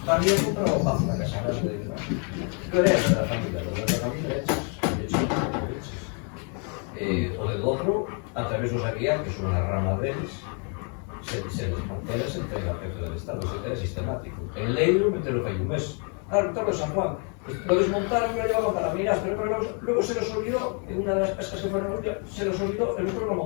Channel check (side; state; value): right; quieter; 39.1 dB